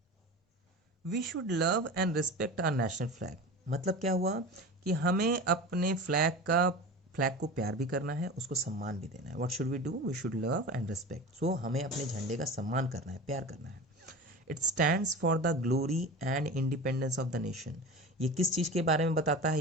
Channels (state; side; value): normal; both; correlation 0.31